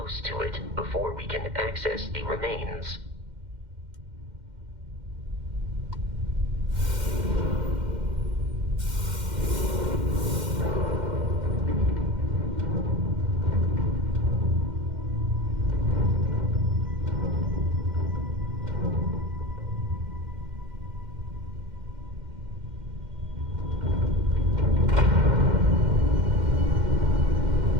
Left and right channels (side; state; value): left; late; 2.1 ms